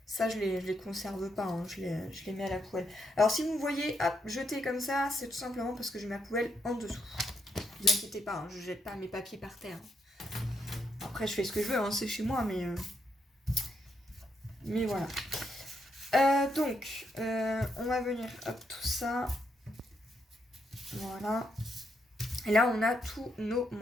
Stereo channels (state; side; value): normal; both; correlation 0.78